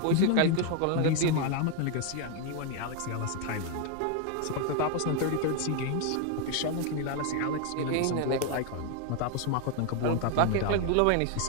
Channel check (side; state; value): both; different; correlation 0.01